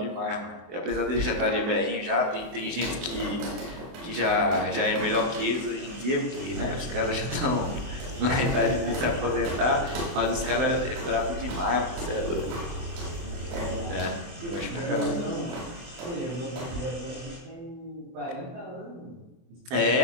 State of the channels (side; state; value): left; late; 24 ms